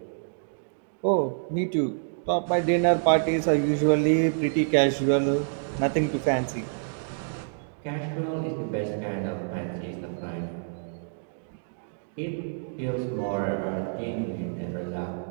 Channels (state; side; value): silent; left; digital silence